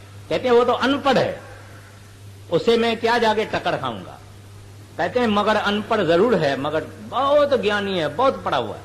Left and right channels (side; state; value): both; identical; correlation 1.00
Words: कहते हैं वो तो अनपढ़ है, उसे मैं क्या जाके टक्कर खाऊंगा। कहते हैं मगर अनपढ़ जरूर है, मगर बहुत ज्ञानी है, बहुत पढ़ा हुआ है,